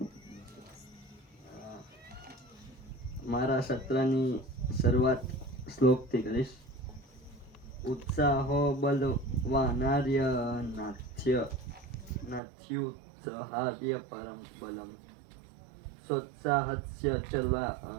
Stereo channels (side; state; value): left; drops out; at 12.4 s